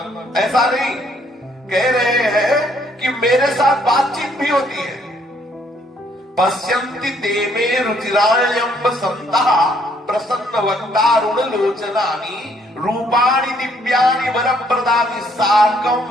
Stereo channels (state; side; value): normal; both; correlation 0.67